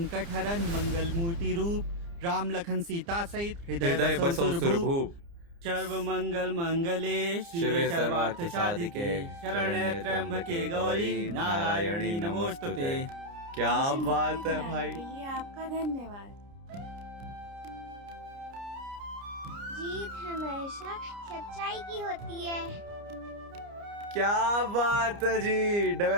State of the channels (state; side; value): late; left; 29 ms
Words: हरन, मंगल मूर्ति रूप। राम लखन सीता सहित हृदय बसौ सुरभूप। सर्व मंगल मंगले शिवे सर्वार्थ साधिके, शरण्य त्र्यंबके गौरी नारायणी नमोस्तुते। क्या मुझे बात मुक्ति है दिलाने भाई। के लिए आपका धन्यवाद। जीत हमेशा सच्चाई की होती है। क्या बात है जी।